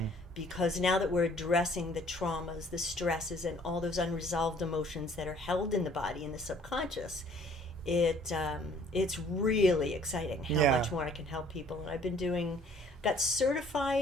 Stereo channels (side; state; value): both; normal; correlation 0.57